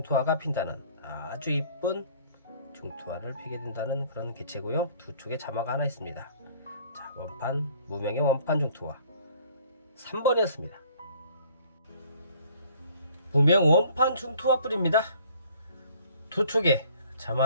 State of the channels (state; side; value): inverted; both; correlation -0.56